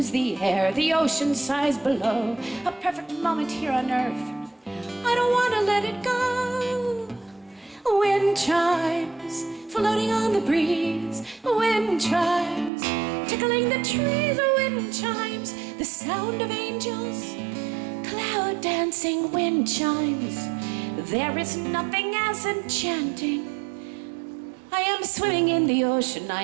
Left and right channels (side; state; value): left; drops out; at 12.7 s